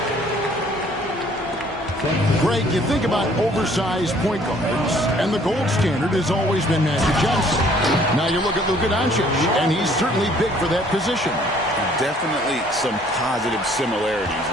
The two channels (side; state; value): both; normal; correlation 0.59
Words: Greg, you think about oversized point guards, and the gold standard has always been Magic Johnson. Now you look at Luka Doncic, and he's certainly big for that position. Definitely some positive similarities,